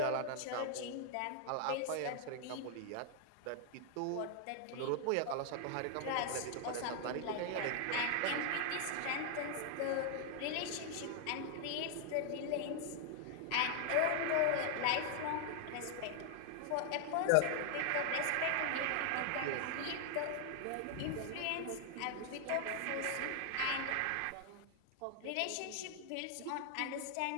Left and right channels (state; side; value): different; both; correlation 0.00